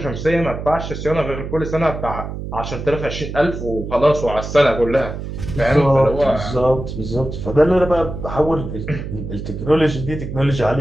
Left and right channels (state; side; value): noise; right; hum, 7 dB below the sound